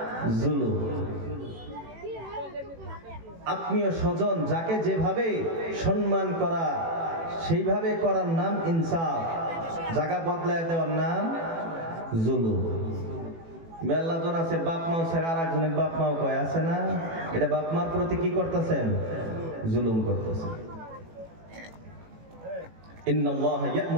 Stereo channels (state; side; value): late; left; 18 ms